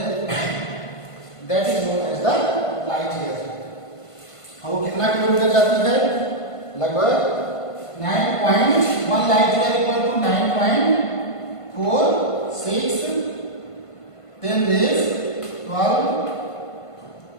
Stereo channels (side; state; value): right; late; 1.5 ms